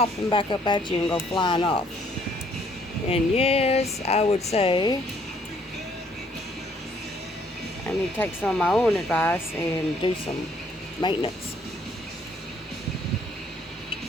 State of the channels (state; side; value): normal; both; correlation 0.65